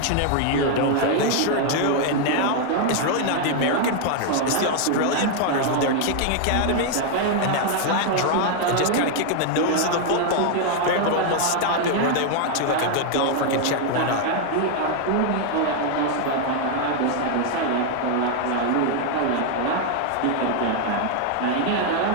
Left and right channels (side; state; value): both; different; correlation 0.00